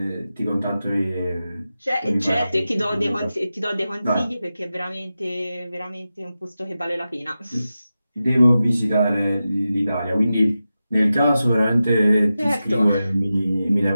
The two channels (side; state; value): both; inverted; correlation -0.92